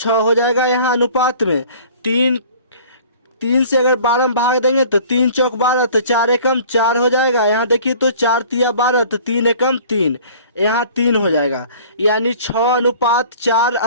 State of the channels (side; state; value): both; inverted; correlation -0.49